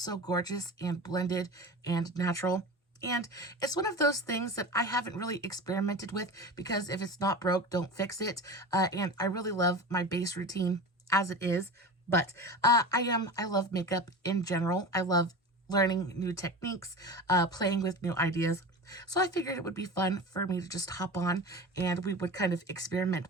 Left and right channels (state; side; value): normal; both; correlation 0.30